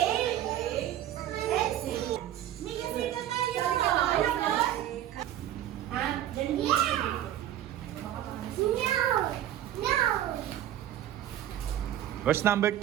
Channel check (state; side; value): quieter; left; 12.1 dB